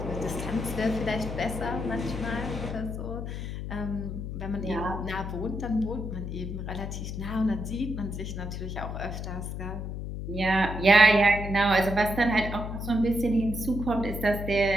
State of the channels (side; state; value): left; noise; hum, 6 dB below the sound